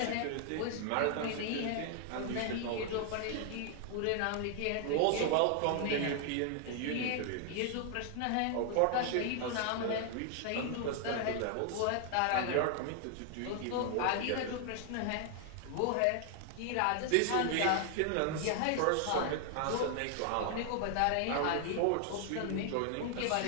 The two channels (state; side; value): different; both; correlation 0.00